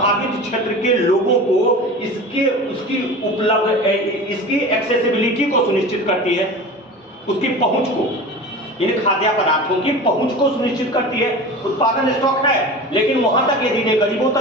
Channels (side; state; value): both; normal; correlation 0.34